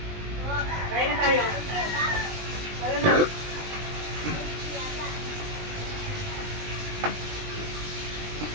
Kain na tayo. Tara na.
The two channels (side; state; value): left; late; 20 ms